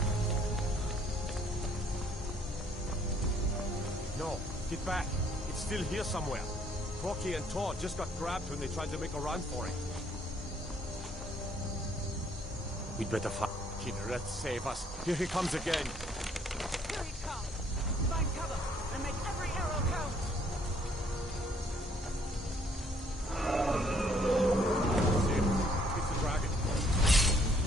No, get back. It's still here somewhere. Corky and Tor just got grabbed when they tried to make a run for it. We'd better find Kinneret, save us. Here he comes again. Here he comes! Find cover and make every arrow count! See him. It's the dragon.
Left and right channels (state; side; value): normal; both; correlation 0.64